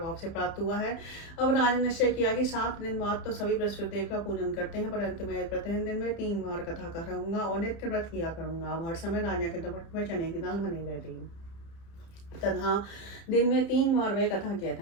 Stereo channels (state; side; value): late; right; 30 ms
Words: से प्राप्त हुआ है। अब राजा ने निश्चय किया कि 7 दिन बाद तो सभी बृहस्पति देव का पूजन करते हैं, परंतु मैं प्रतिदिन दिन में 3 बार कथा करूंगा और नित्य व्रत किया करूंगा। अब हर समय राजा के दोपट में चने की दाल बनी रहती तथा दिन में 3 बार वह कथा कहता